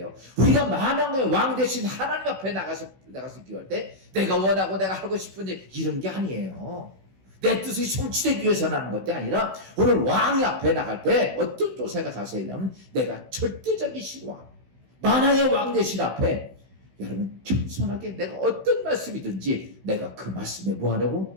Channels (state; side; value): late; left; 16 ms